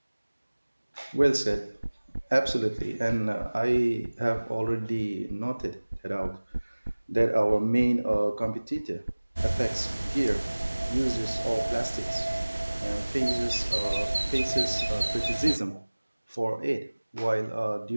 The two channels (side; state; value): both; inverted; correlation -1.00